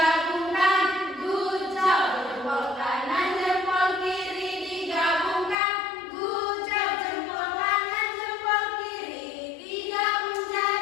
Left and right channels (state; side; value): drops out; right; at 5.6 s